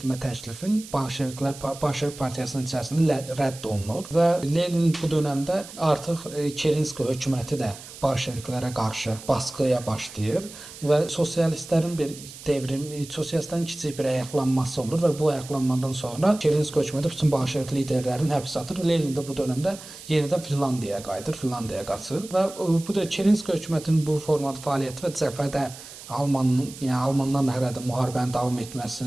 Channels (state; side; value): noise; right; hiss, 15 dB below the sound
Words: təklifin Bolşevik partiyasının içərisində rədd olunur və Lenin bu dövrdə artıq Kerenski hökuməti də Bolşeviklərə qarşı baskıya başlayır və sosialistlərin bir sosialistlərin kiçik bir ayaqlanması olur və bu ayaqlanmadan sonra Kerenski hökuməti bütün Bolşevik liderlərini həbsə atır. Lenin də bu dövrdə yenidən Finlandiyaya qayıdır, Finlandiyaya qaçır və bu da Kerenski hökumətinin bu formada fəaliyyəti və cəbhədə Almanlarla hələ də müharibənin davam